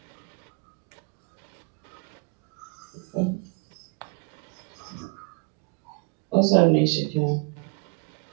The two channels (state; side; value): quieter; left; 31.6 dB